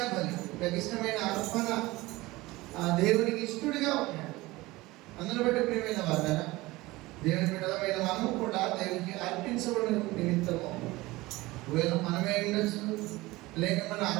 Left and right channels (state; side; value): quieter; left; 20.1 dB